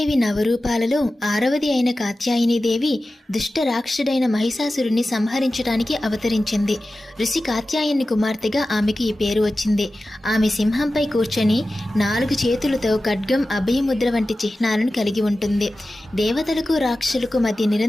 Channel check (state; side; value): normal; both; correlation 0.95